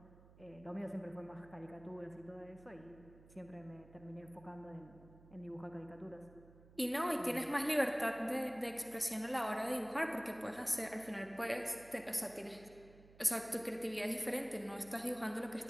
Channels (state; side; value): noise; right; hum, 22 dB below the sound